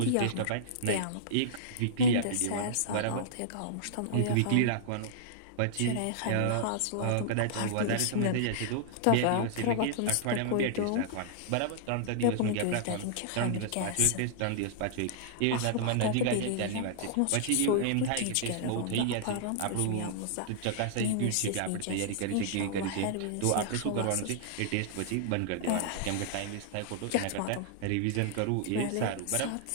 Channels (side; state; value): both; different; correlation -0.02